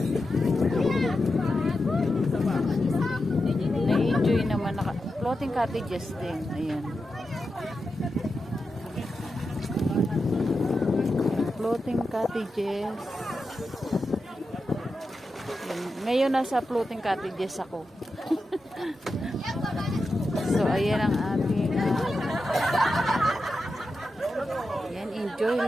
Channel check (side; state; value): both; normal; correlation 0.89